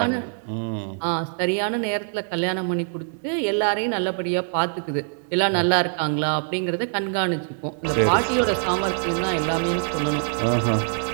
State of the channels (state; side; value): silent; left; digital silence